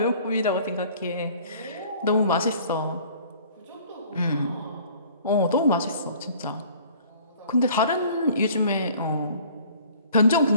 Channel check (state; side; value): inverted; both; correlation -0.52